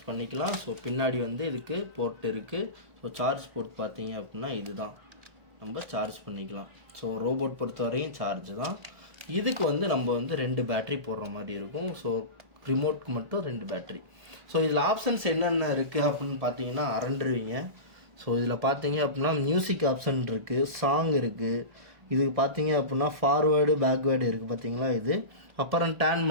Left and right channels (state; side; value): late; left; 1.4 ms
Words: பண்ணிக்கலாம். ஸோ பின்னாடி இதுக்கு போர்ட் இருக்குது. ஸோ சார்ஜ் போர்ட் பார்த்தீங்க அப்படின்னா இதுதான், நம்ம சார்ஜ் பண்ணிக்கலாம். ஸோ ரோபோட் பொறுத்த வரையும் சார்ஜ் தான். இதுக்கு நம்ம 2 பேட்ரி போடுற மாதிரி இருக்கும். ஸோ ரிமோட்க்கு மட்டும் 2 பேட்ரி. ஸோ இதில் ஆப்ஷன்ஸ் என்னென்ன இருக்குது அப்படின்னு பார்த்தீங்கன்னா அரண்டுருவீங்க. ஸோ இதில் பார்த்தீங்க அப்படின்னா மியூசிக் ஆப்ஷன் இருக்குது, சாங் இருக்குது. இதுக்கு பார்த்தீங்க அப்படின்னா ஃபார்வேர்டு பேக்வேர்டு இருக்குது பார்த்தீங்களா? இது அப்புறம் டேர்ன்